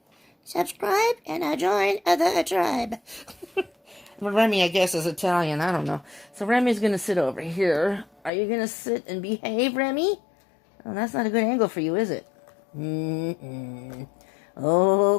Subscribe and join the tribe. Well, Remy, I guess, is Italian. I don't know. So Remy's going to sit over here. Are you going to sit and behave, Remy? Oh, that's not a good angle for you, is it?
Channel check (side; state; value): right; drops out; at 8.3 s